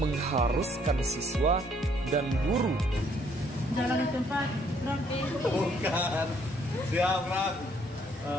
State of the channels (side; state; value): both; normal; correlation 0.66